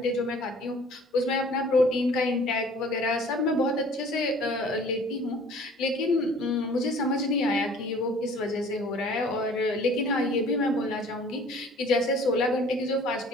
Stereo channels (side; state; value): both; normal; correlation 0.50